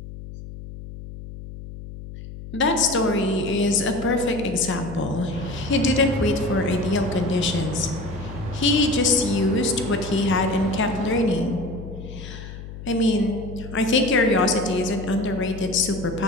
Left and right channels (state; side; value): noise; left; hum, 12 dB below the sound